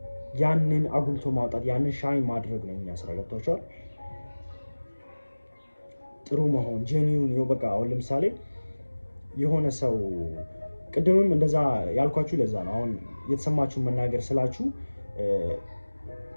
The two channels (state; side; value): inverted; both; correlation -1.00